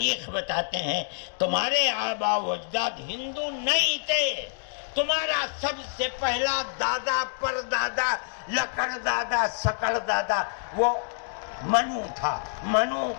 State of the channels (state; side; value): silent; right; digital silence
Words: بتاتے ہیں۔ تمہارے آبا و اجداد ہندو نہیں تھے، تمہارا سب سے پہلا دادا پردادا لکڑ دادا سکڑ دادا وہ منو تھا۔ منو